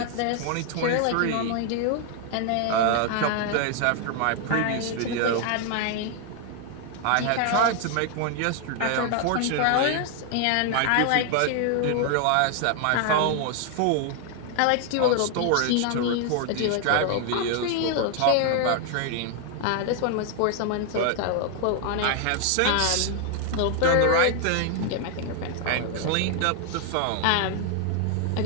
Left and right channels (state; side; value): different; both; correlation 0.00